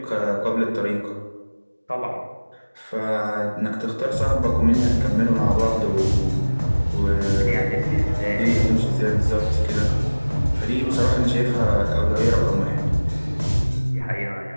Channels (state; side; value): inverted; both; correlation -1.00